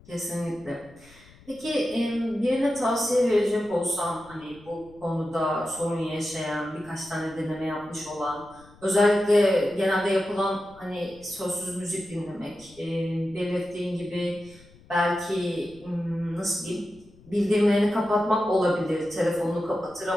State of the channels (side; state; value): left; noise; rumble, 25 dB below the sound